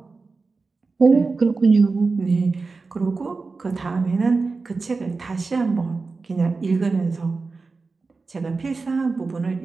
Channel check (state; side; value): quieter; left; 4.1 dB